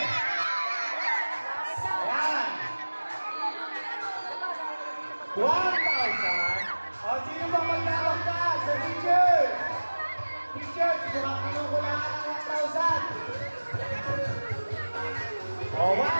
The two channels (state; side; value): inverted; both; correlation -1.00